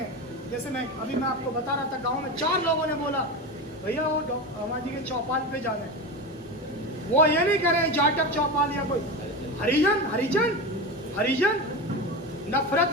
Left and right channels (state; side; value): normal; both; correlation 0.23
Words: जैसे मैं आपको बता रहा था, गांव में 4 लोगों ने बोला भैया वो अम्मा जी के चौपाल पे जा रहे हैं। वो ये नहीं करें जाटक चौपाल या कोई हरिजन हरिजन हरिजन।